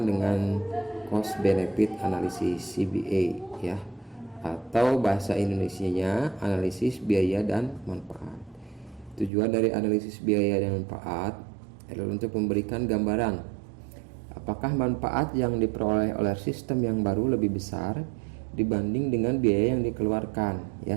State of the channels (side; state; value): left; drops out; at 9.3 s